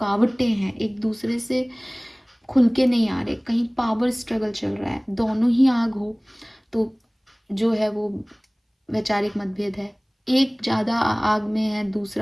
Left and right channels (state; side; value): identical; both; correlation 1.00